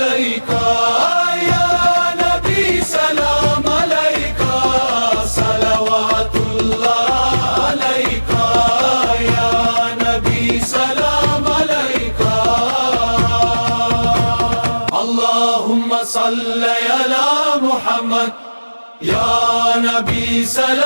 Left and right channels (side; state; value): both; inverted; correlation -1.00